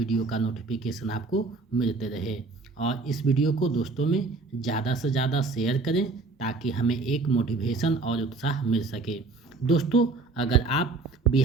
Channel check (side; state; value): left; quieter; 3.8 dB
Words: का नोटिफिकेशन आपको मिलते रहे। और इस वीडियो को दोस्तों में ज़्यादा से ज़्यादा शेयर करें ताकि हमें एक मोटिवेशन और उत्साह मिल सके। दोस्तों, अगर आप